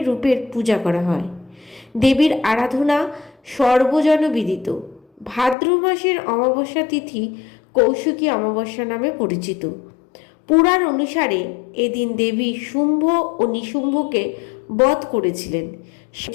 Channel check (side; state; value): right; drops out; at 5.6 s